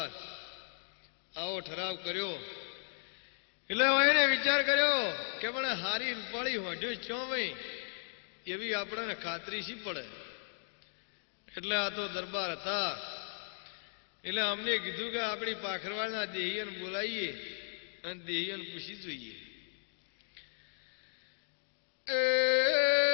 આવો ઠરાવ કર્યો એટલે એને વિચાર કર્યો કે પણ હારી રૂપાળી હોઢ્યો ચો ભાઈ એવી આપણને ખાતરી શી પડે એટલે આ તો દરબાર હતા એટલે અમને કીધું કે આપણી પાખરવાના દેહિયન બોલાવીએ અને દેહિયન પૂછી જોઈએ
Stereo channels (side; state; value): right; silent; digital silence